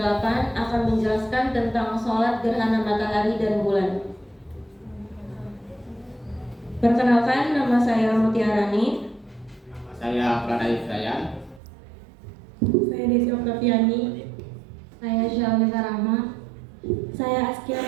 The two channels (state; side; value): drops out; left; at 11.6 s